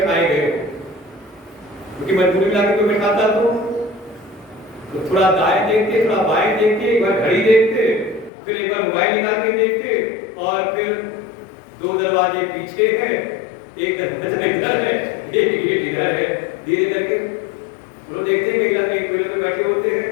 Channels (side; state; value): right; drops out; at 8.3 s